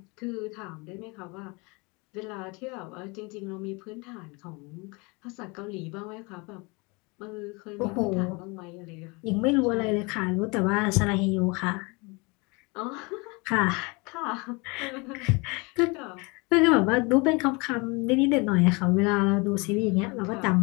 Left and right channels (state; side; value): quieter; right; 28.1 dB